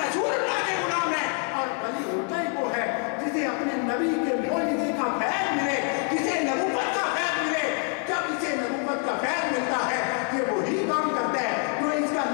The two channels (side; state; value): right; quieter; 39.1 dB